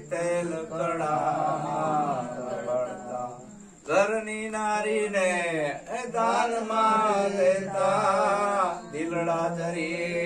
તેલ કડામાં તળતા. ઘરની નારીને દાનમાં દેતા, દિલડા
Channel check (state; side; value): identical; both; correlation 1.00